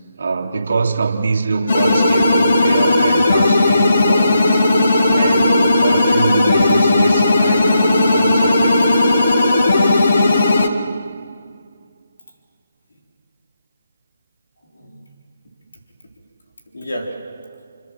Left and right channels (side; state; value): both; inverted; correlation -0.82